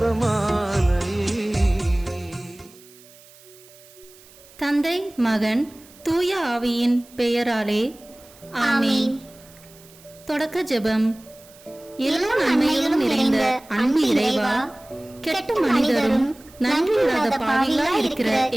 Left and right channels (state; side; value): noise; right; hiss, 24 dB below the sound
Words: தந்தை மகன் தூய ஆவியின் பெயராலே ஆமீன். தொடக்க ஜெபம். எல்லா நன்மையிலும் நிறைந்த அன்பு இறைவா, கெட்ட மனிதரும் நன்றியில்லாத பாவிகளாய் இருக்கிற